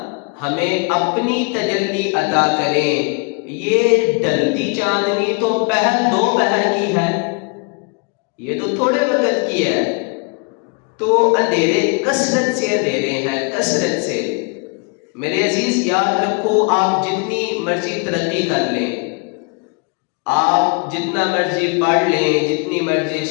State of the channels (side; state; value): right; quieter; 33.3 dB